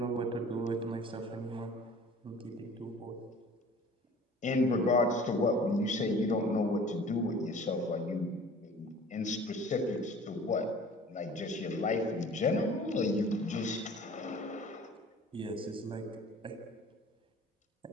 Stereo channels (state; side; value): normal; both; correlation 0.46